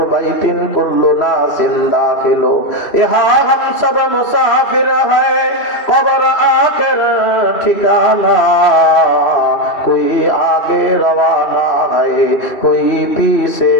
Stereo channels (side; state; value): right; late; 2.7 ms